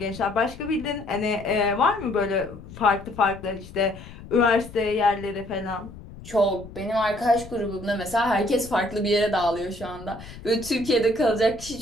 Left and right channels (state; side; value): noise; left; rumble, 16 dB below the sound